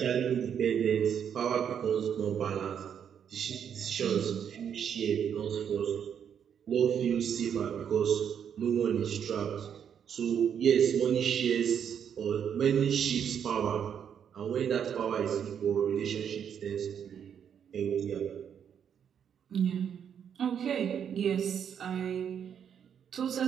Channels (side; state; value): left; quieter; 8.2 dB